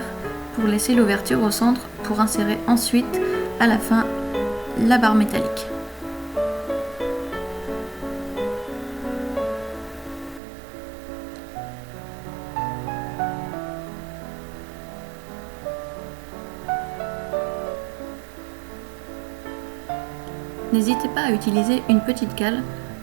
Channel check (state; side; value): drops out; left; at 10.4 s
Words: pour laisser l'ouverture au centre pour insérer ensuite à la fin la barre métallique. N'hésitez pas à utiliser une petite cale